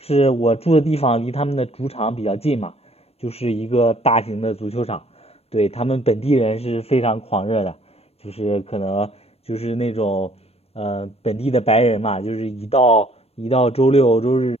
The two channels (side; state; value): right; late; 0.29 ms